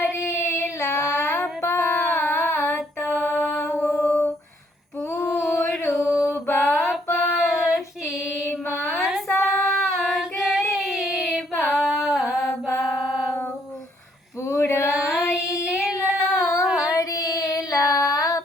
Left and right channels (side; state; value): both; normal; correlation 0.69